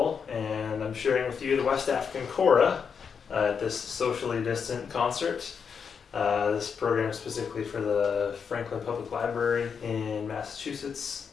and I'm sharing with you the West African Kora at this socially distant concert. This program is specifically for the Franklin Public Library in Massachusetts,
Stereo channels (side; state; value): right; quieter; 6.4 dB